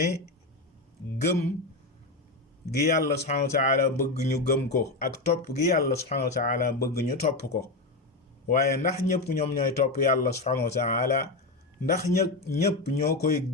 gëm gi yàlla subhanahu wa taala bëgg ñu gëm ko ak topp gi yàlla subhanahu wa taala bëgg ñu topp ko waaye ndax ñëpp ñoom ñooy topp yàlla subhanahu wa taala ndax ñëpp ñoo koy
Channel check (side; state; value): right; quieter; 3.0 dB